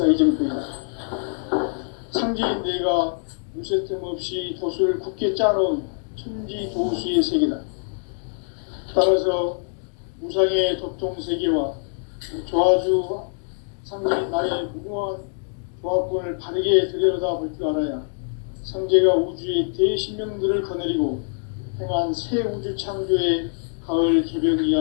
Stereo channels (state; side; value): silent; right; 63 dB below the other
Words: 이정표이다. 상제인 내가 무쇠 틈 없이 돛을 굳게 짜놓은 천지 도수의 세계다. 따라서 무상의 도통 세계와 조화주 상제인 나의 무궁한 조합권을 바르게 들여다볼 줄 알아야 상제가 우주의 대신명들을 거느리고 행한 새 우주 창조의 가을 개벽